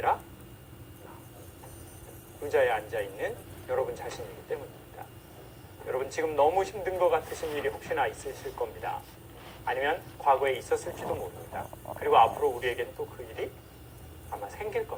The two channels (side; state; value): both; identical; correlation 1.00